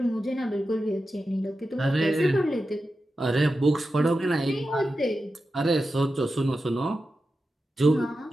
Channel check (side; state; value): both; normal; correlation 0.91